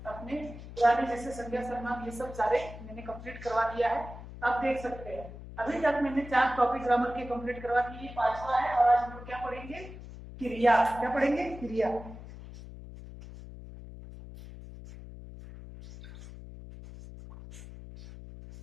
अपने पुराने जैसे संज्ञा शर्मा ये सब सारे मैंने कंप्लीट करवा दिया है, आप देख सकते हैं। अभी तक मैंने 4 टॉपिक ग्रामर के कंप्लीट करवा दिए, 5वां है। और आज हम लोग क्या पढ़ेंगे? क्रिया। क्या पढ़ेंगे? क्रिया।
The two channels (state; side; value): noise; left; hum, 14 dB below the sound